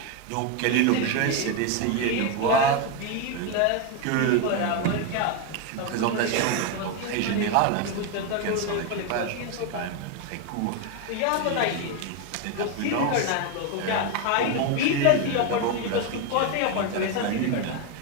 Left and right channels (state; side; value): different; both; correlation 0.02